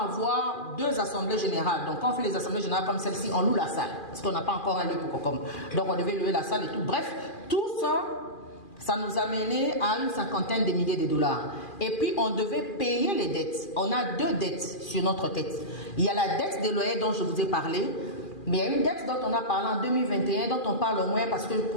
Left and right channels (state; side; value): late; right; 2.4 ms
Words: 2 assemblées générales. Donc quand on fait les assemblées générales comme celle-ci, on loue la salle. Parce qu'on n'a pas encore un lieu pour COCOM. Donc on devait louer la salle et tout. Bref, tout ça, ça nous a mené à une 50aine de milliers de $. Et puis on devait payer les dettes. On a 2 dettes sur notre tête. Il y a la dette des loyers dont je vous ai parlé. Mais il y a une dette dont on a parlé en 2021, dont on parle au moins parce que